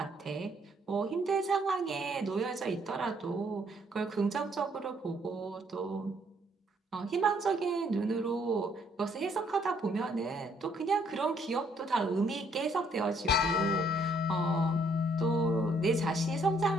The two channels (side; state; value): both; normal; correlation 0.67